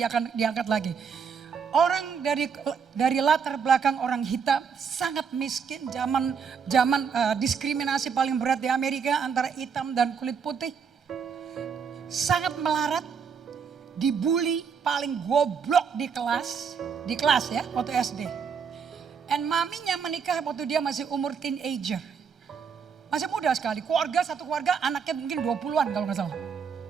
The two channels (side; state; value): left; quieter; 6.5 dB